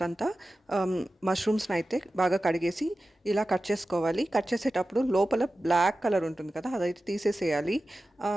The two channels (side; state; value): both; normal; correlation 0.94